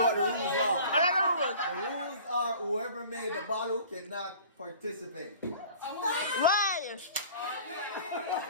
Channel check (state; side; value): inverted; both; correlation -0.45